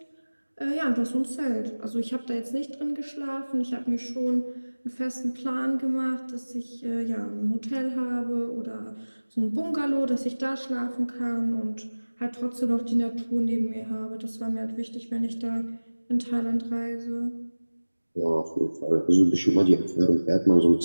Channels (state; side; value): inverted; both; correlation -1.00